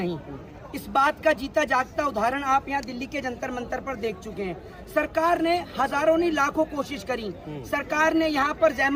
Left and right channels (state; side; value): identical; both; correlation 1.00